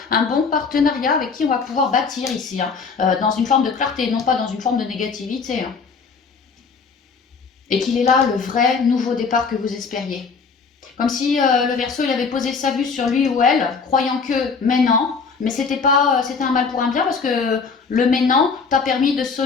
un bon partenariat avec qui on va pouvoir bâtir ici, hein, dans une forme de clarté, non pas dans une forme de négativité. Hein. Et qu'il est là le vrai nouveau départ que vous espériez. Comme si le Verseau il avait posé sa vue sur lui ou elle, croyant que maintenant, mais c'était un mal pour un bien parce que le maintenant t'a permis de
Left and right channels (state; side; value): quieter; right; 5.1 dB